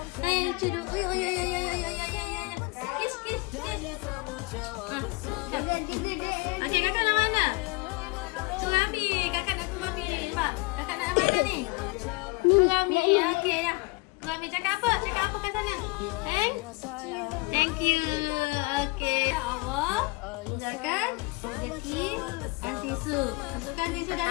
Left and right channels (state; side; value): quieter; right; 26.1 dB